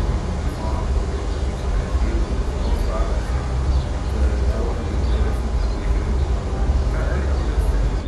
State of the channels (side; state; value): both; identical; correlation 1.00